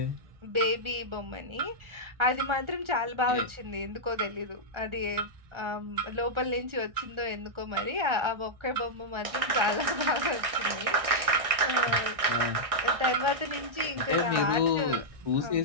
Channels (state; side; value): late; left; 1.6 ms